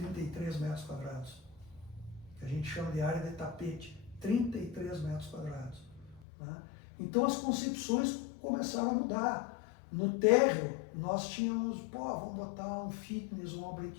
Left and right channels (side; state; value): right; drops out; at 6.2 s